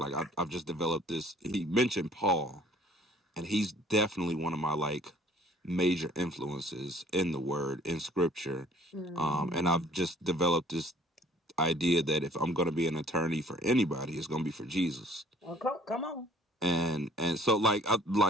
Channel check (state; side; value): normal; both; correlation 0.55